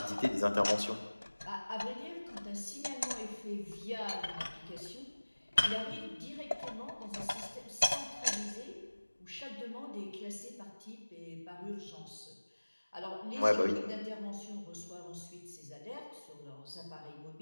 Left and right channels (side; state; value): both; inverted; correlation -1.00